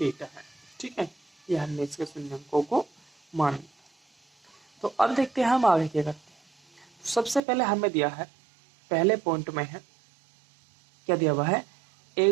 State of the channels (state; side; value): drops out; left; at 7.4 s